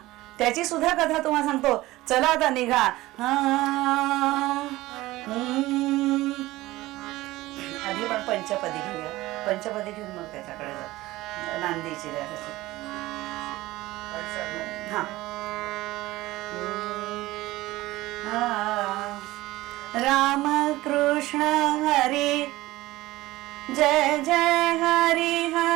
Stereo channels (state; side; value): quieter; left; 18.1 dB